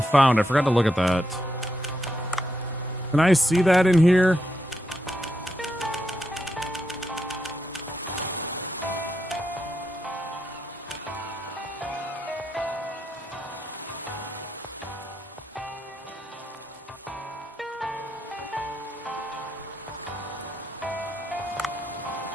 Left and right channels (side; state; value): both; normal; correlation 0.82